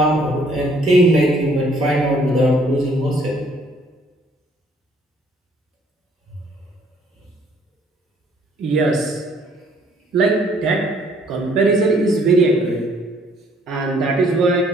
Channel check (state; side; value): normal; both; correlation 0.62